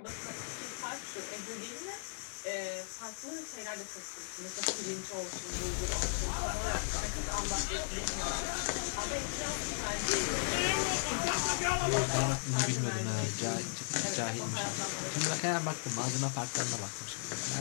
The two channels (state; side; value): silent; right; digital silence